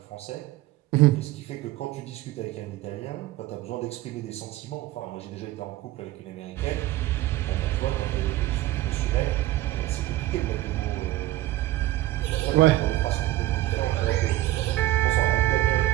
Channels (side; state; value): left; quieter; 16.0 dB